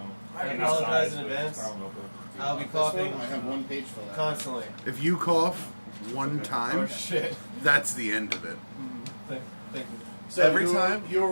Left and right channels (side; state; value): both; inverted; correlation -1.00